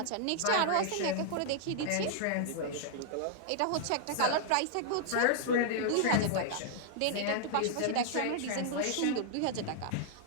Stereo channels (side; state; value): both; different; correlation -0.01